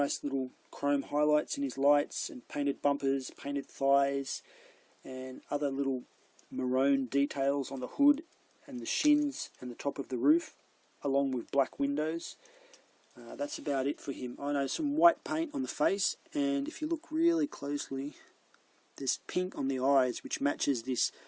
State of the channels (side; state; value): both; identical; correlation 1.00